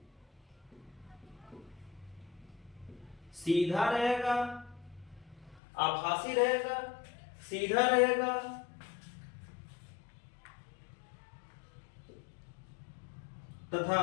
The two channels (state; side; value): drops out; right; at 5.6 s